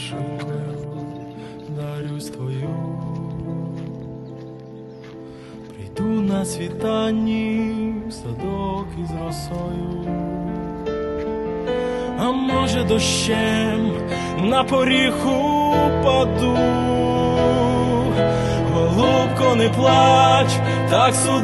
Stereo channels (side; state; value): both; identical; correlation 1.00